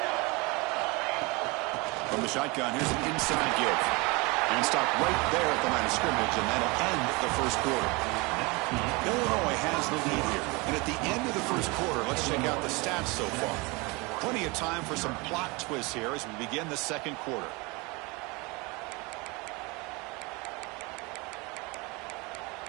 From the shotgun, here's an inside give. And stop right there at the line of scrimmage, and that'll end the first quarter. Illinois has the lead here. And at the end of the first quarter, let's check out the stats so far. Plenty of time for some plot twists here as we begin the second quarter.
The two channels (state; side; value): quieter; left; 26.6 dB